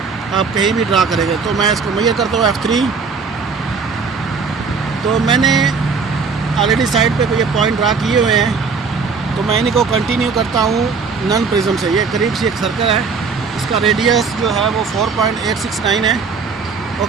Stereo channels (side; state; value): left; quieter; 5.2 dB